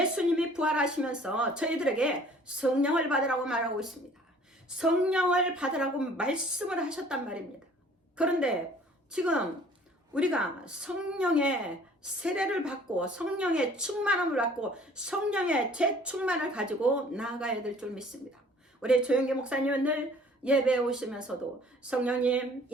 부활하시면서 저희들에게 성령을 받으라고 말하고 있습니다. 성령을 받으라고 말씀을 하셨단 말입니다. 그런데 지금 우리가 성령의 세례를 받고 성령의 충만함을 받고 성령의 재충만을 가지고 나아가야 될 줄 믿습니다. 우리 조영기 목사님은 늘 예배에 오시면서도 성령님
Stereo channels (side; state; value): both; normal; correlation 0.53